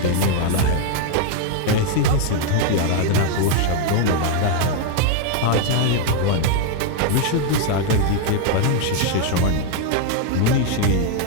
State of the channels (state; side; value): different; both; correlation 0.00